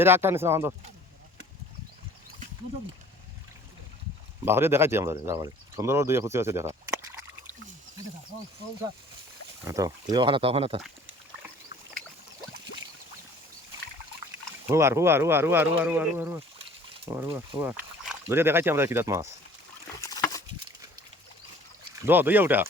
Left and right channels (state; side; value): normal; both; correlation 0.51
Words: একটা নিছ না বাহরে দেখাইছি আমরা যাবারে সুন্দর দুই খুশি আছে দেখা তো তুই ওখানে তো ওখানে তো হুয়ার হুয়ার হুয়ার হুয়ার হুয়ার হুয়ার হুয়ার হুয়ার হুয়ার হুয়ার ধরে দেখাইছি আমরা কিরাত মাছ দইয়া উঠা